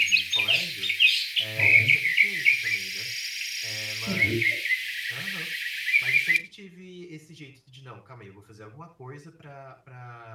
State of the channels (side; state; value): both; identical; correlation 1.00